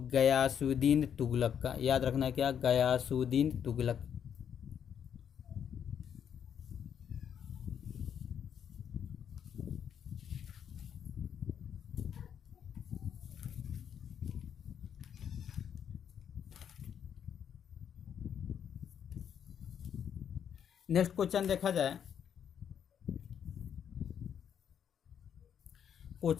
गयासुद्दीन तुगलक का। याद रखना है क्या, गयासुद्दीन तुगलक। नेक्स्ट क्वेश्चन देखा जाए,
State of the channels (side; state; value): right; quieter; 8.4 dB